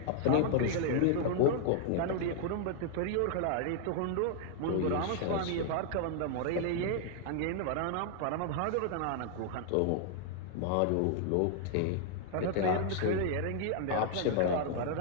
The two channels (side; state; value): both; different; correlation 0.00